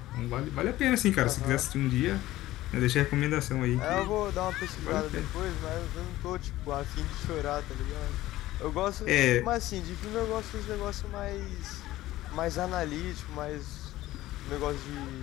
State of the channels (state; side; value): quieter; right; 16.0 dB